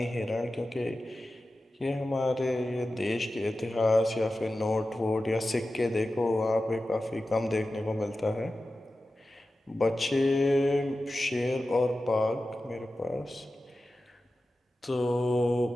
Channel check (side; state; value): both; normal; correlation 0.94